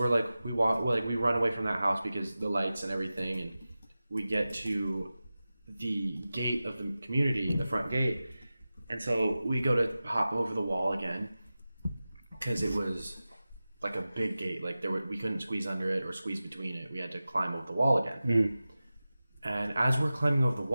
run away from that house because the lights and everything, and we get to the gate of the community, the front gate. And so we go to hop over the wall again because it was like a big gate. Like we couldn't squeeze under it or squeeze between it. We had to climb over the wall again. And as we're climbing over the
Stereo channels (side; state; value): both; inverted; correlation -0.95